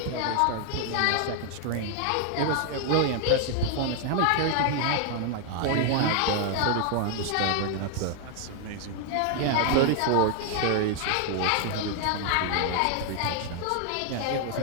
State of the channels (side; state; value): both; different; correlation 0.00